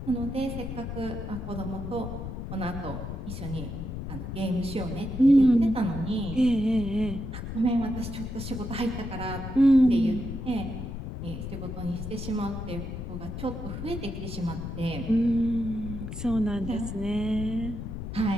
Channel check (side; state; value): left; noise; rumble, 7 dB below the sound